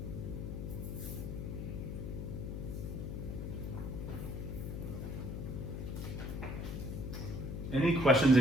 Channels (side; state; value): left; noise; hum, 4 dB below the sound